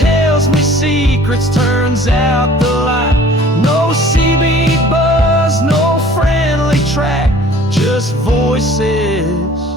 me secrets, turns out the light. No CB buzz, no friendly track, just voices.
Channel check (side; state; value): both; normal; correlation 0.50